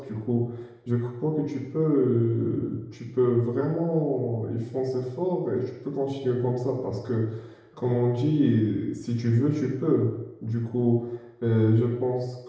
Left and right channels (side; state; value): both; identical; correlation 1.00